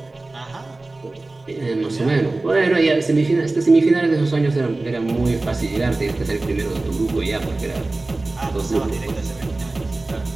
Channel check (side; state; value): left; quieter; 3.1 dB